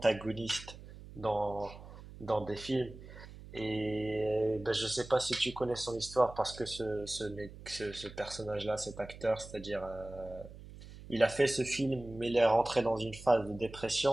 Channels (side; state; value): right; noise; hum, 16 dB below the sound